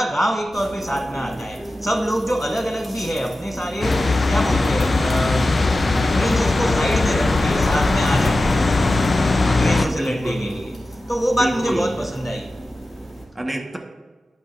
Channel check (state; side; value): normal; both; correlation 0.94